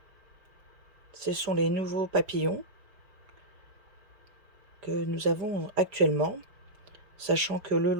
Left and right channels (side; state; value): left; late; 5.0 ms